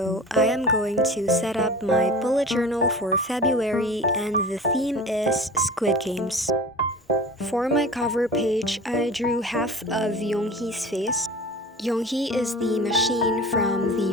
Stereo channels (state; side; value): normal; both; correlation 0.37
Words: I am going to set up my bullet journal for February and the theme is Squid Games. For my cover page, I drew half of Yonghee's face. Yonghee is the machine from